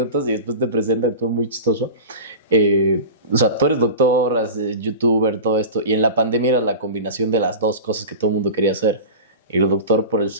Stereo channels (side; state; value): both; inverted; correlation -0.32